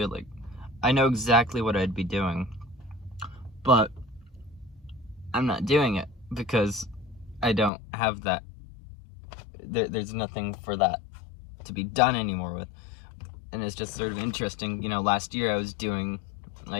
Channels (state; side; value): drops out; right; at 7.7 s